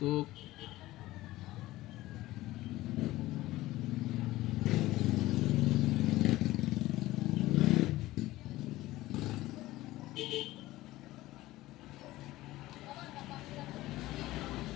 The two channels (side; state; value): right; quieter; 17.2 dB